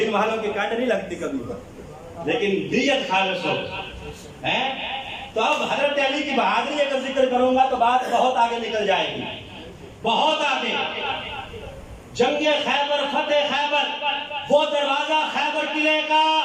والوں کی کانڈ نہیں لگتی کبھی، لیکن نیت خالص ہو۔ تو اب حضرت علی کی بہادری اگر ذکر کروں گا تو بات بہت آگے نکل جائے گی، بہت آگے۔ جنگ خیبر، فتح خیبر، وہ دروازہ خیبر قلعے کا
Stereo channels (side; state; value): both; identical; correlation 1.00